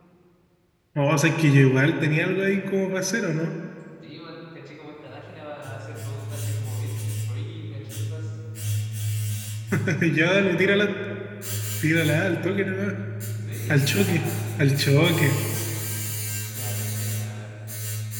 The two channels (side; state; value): both; identical; correlation 1.00